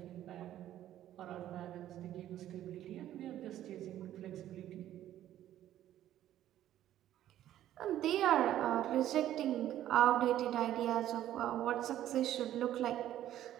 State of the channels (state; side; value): quieter; left; 12.4 dB